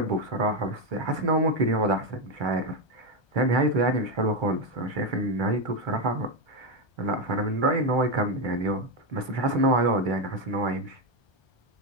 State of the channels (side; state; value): right; late; 1.3 ms